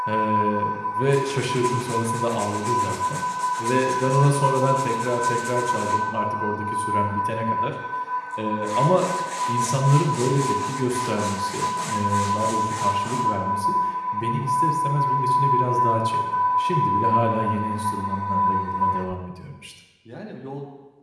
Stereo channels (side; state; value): both; identical; correlation 1.00